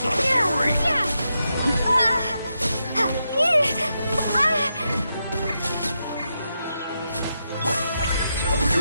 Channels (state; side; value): inverted; both; correlation -0.85